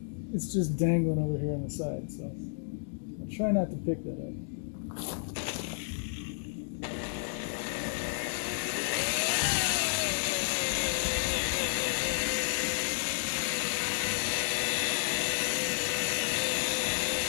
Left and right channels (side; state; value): right; silent; digital silence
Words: It's just dangling over here on the side, so I'll try not to pick that up.